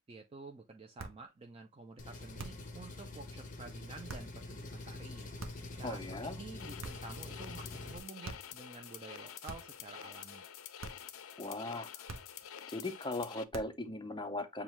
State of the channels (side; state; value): both; normal; correlation 0.39